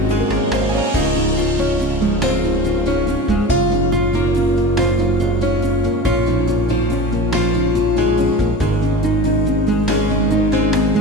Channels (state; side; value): normal; both; correlation 0.34